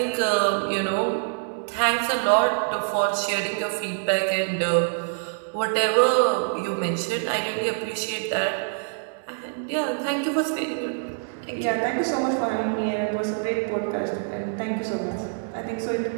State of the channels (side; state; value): left; silent; digital silence